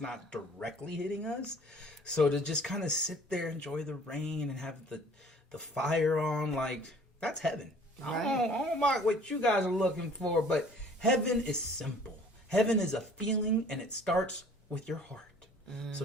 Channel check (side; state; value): both; normal; correlation 0.52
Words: not directly hitting us. So to just kind of sit there, enjoy the rain, and have the fire on, that's heaven. Right. I don't mind what you guys are looking for, but heaven is simple. Heaven is a feeling, and it starts with your heart. So